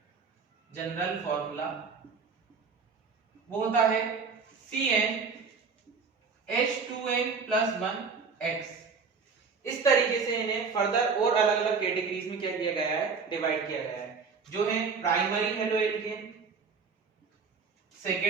जनरल फॉर्मूला वो होता है CnH2n+1x। इस तरीके से इन्हें फर्दर और अलग अलग कैटेगरीज में क्या किया गया है, डिवाइड किया गया है, जो है primary halo alkane,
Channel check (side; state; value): left; quieter; 5.2 dB